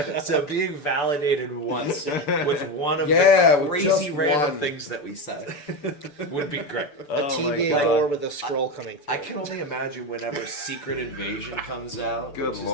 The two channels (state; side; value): late; right; 6.9 ms